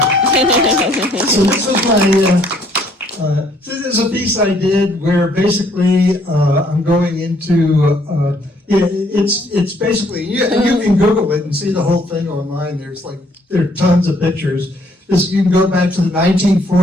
So this is my. This is a piece I did where basically I'm going into. It's basically you can Google it and see the whole thing online. There are tons of pictures. You can go back to the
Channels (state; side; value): normal; both; correlation 0.65